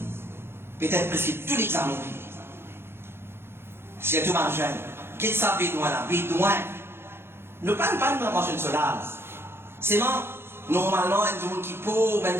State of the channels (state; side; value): late; left; 0.11 ms